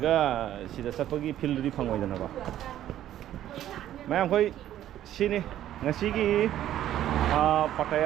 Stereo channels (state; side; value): quieter; left; 12.2 dB